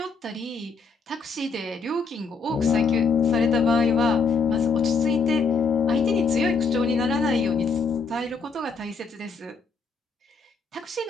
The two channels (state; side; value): quieter; right; 4.7 dB